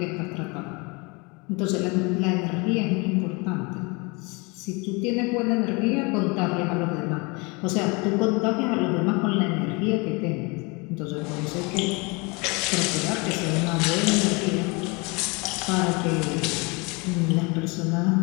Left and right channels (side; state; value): right; quieter; 28.6 dB